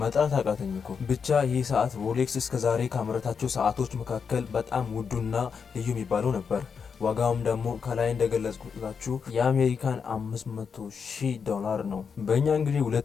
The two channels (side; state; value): right; quieter; 6.1 dB